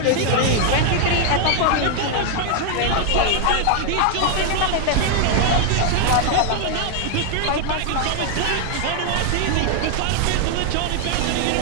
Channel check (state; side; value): different; both; correlation 0.00